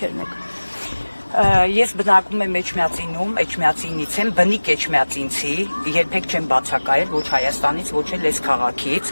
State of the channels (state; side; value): inverted; both; correlation -1.00